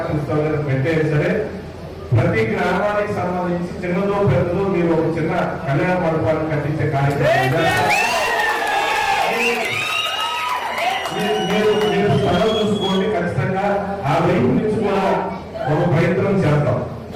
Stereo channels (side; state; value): both; identical; correlation 1.00